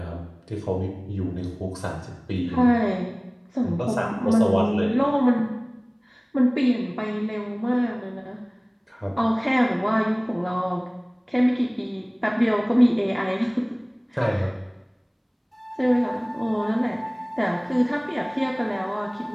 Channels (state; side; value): identical; both; correlation 1.00